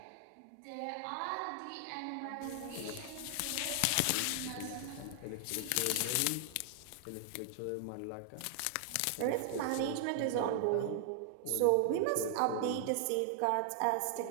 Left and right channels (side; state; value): both; different; correlation 0.00